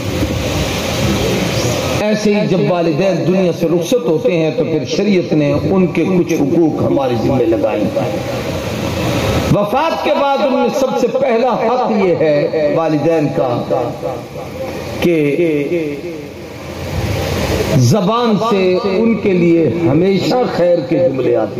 ایسے ہی جب والدین دنیا سے رخصت ہوتے ہیں تو پھر شریعت نے ان کے کچھ حقوق ہمارے ذمہ لگائے۔ وفات کے بعد ان میں سب سے پہلا حق یہ ہے والدین کا کہ زبان سے ان کے لیے ہمیشہ خیر کے جملے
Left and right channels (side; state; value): both; identical; correlation 1.00